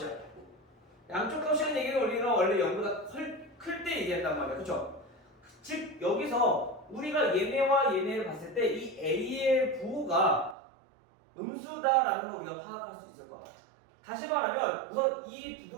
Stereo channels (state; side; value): drops out; left; at 10.6 s